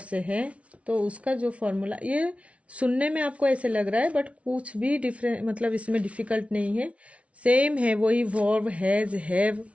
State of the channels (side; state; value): left; late; 0.063 ms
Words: से है तो उसका जो फॉर्मूला, ये सुनने में आपको ऐसे लग रहा है बट कुछ भी डिफरेंट, मतलब इसमें डिफिकल्ट नहीं है, सेम है, वही वर्ब, हैज, हैव,